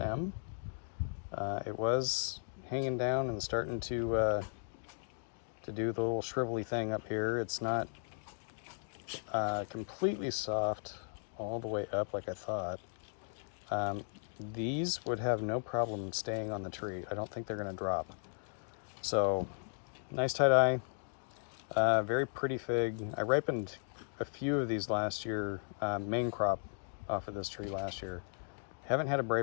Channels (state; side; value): silent; right; digital silence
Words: It was hanging down and starting to do the little shrivelly thing up here. It's not completely soft all the way up like I thought. These would have no problem staying on the tree. I don't think they're going to drop. So, nice tie-dye, very pretty fig. I ripened a few of these last year, main crop off of this tree last year. Haven't had a